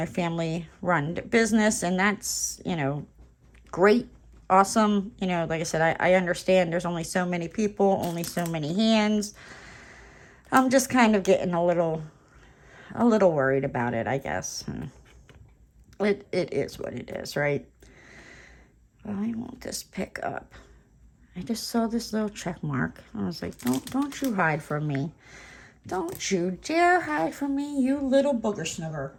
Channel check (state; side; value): identical; both; correlation 1.00